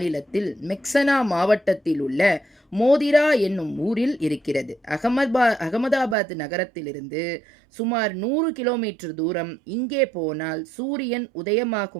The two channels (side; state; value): left; drops out; at 6.2 s